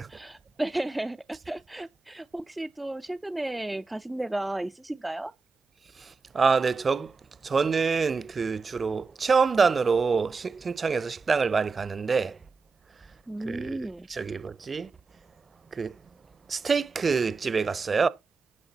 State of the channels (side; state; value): left; quieter; 4.4 dB